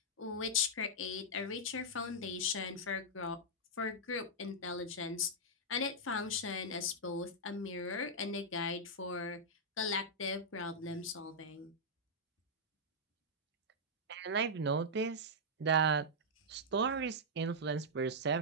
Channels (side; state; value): both; normal; correlation -0.08